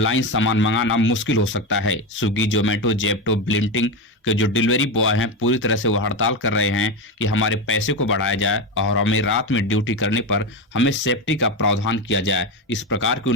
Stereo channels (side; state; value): both; normal; correlation 0.15